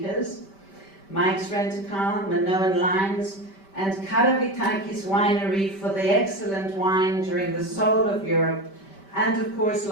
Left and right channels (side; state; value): right; late; 5.1 ms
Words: Mike's Rent-A-Car, Minoan Lines, and Karavitakis Winery for the excellent wine during the soul of Europe, and of course,